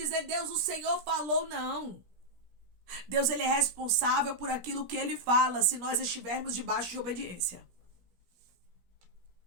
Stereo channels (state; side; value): late; left; 17 ms